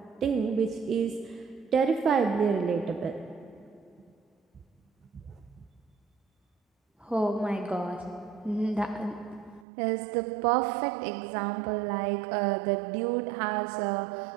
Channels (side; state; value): left; drops out; at 9.7 s